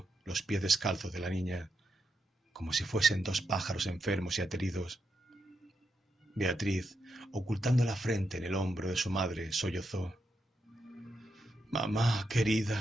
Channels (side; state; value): both; normal; correlation 0.83